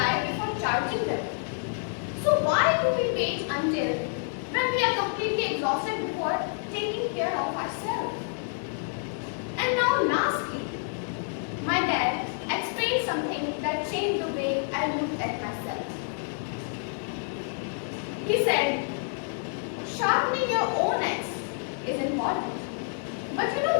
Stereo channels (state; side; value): silent; right; 59 dB below the other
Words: before charging them. So why do we wait until when we are completely exhausted before taking care of ourselves? And now lastly, my dad explained something that changed the way I looked at myself. He said, sharpening your own axe is important. But you